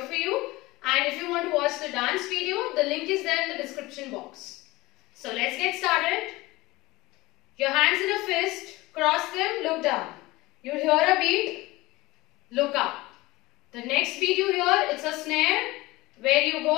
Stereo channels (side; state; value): right; quieter; 20.4 dB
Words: for you, and if you want to watch the dance video, the link is there in the description box. So let's get started. Your hands in a fist, cross them, look down. You hear a beat, look up. The next beat you hear, it's a snare where you